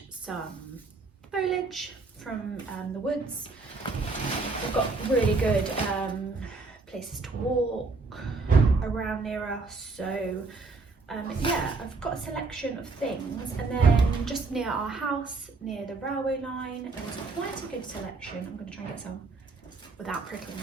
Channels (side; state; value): left; quieter; 3.8 dB